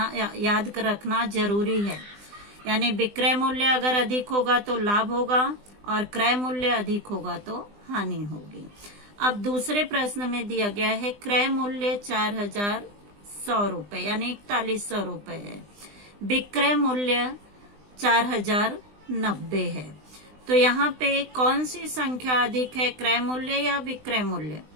याद रखना जरूरी है। यानी विक्रय मूल्य अगर अधिक होगा तो लाभ होगा, और क्रय मूल्य अधिक होगा तो हानि होगी। अब दूसरे प्रश्न में दिया गया है क्रय मूल्य 4100 रुपए यानी 4100 रुपए है, विक्रय मूल्य 4090 है। तो यहाँ पे कौन सी संख्या अधिक है, क्रय मूल्य या विक्रय मूल्य?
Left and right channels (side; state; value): left; late; 20 ms